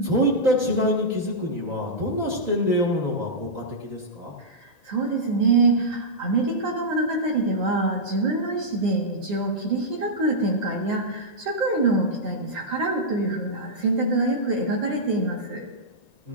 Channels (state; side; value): late; right; 1.9 ms